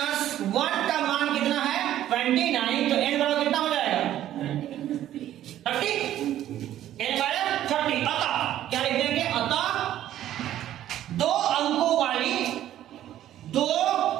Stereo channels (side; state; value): left; quieter; 12.4 dB